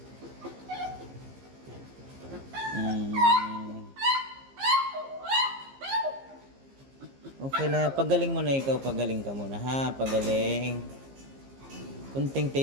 Okay na, pagaling mo na ikaw, pagaling ka muna ha, pagaling. Kunting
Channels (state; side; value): late; left; 15 ms